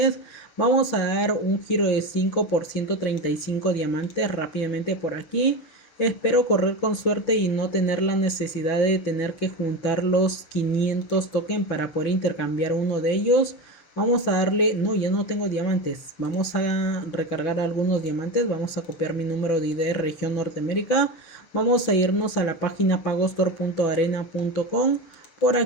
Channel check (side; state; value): right; late; 6.0 ms